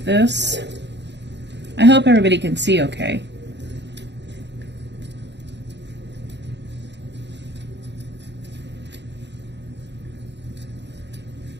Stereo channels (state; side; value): late; left; 0.51 ms